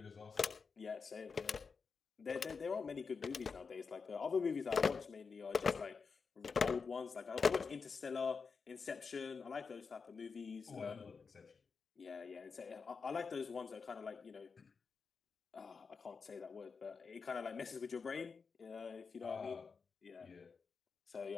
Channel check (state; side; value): quieter; right; 5.2 dB